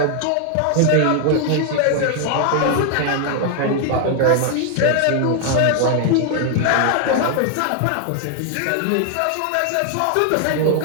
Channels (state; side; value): different; both; correlation 0.00